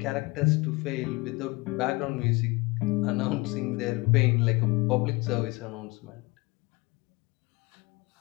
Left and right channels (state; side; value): quieter; right; 24.3 dB